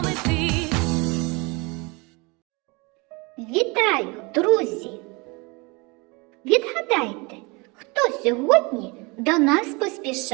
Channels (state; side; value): quieter; left; 27.5 dB